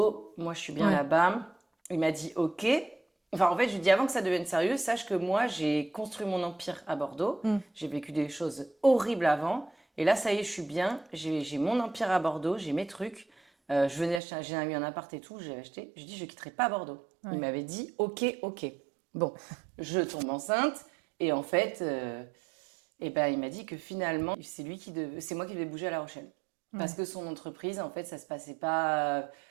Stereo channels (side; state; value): left; drops out; at 14.2 s